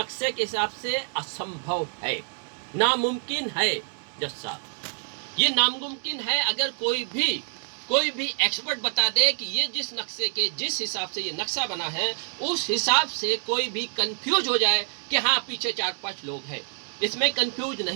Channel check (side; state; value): left; silent; 55 dB below the other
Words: के हिसाब से असंभव है, नामुमकिन है। जज साहब, ये नामुमकिन है। अगर कोई भी एक्सपर्ट बता दे कि ये जिस हिसाब से ये नक्शा बना है उस हिसाब से कोई भी कंफ्यूज हो जाए कि हाँ पीछे 4-5 लोग हैं, इसमें कंफ्यूज